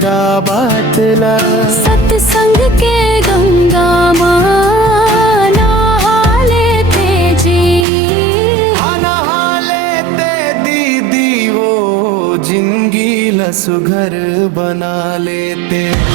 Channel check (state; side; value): drops out; left; at 7.9 s